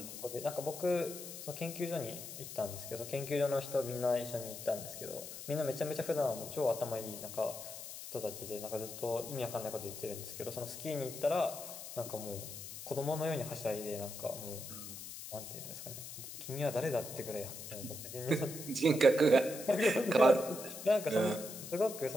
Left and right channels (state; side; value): noise; left; hiss, 10 dB below the sound